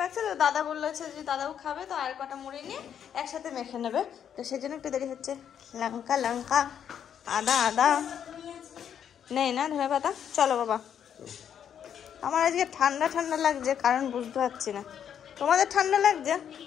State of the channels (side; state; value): right; quieter; 8.8 dB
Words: মাখছে। তো দাদা বলছে যে দাদাও খাবে, তো আর কটা মুড়ি নিয়ে একসাথে মেখে নেবে, তো সেই জন্য একটু দেরি হচ্ছে। লঙ্কা লঙ্কা, আদা আদা নেই না, ধনে পাতা। চলো বাবা, আমার আজকে ঠান্ডা ঠান্ডা লাগছে, কারণ বুঝতে পারছি না। তোমাদের ঠান্ডা লাগছে?